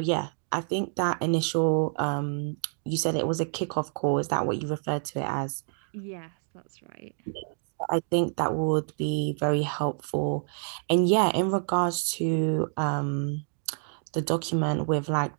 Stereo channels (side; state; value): left; silent; 57 dB below the other